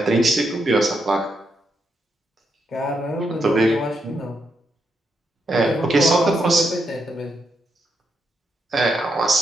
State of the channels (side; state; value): both; normal; correlation 0.81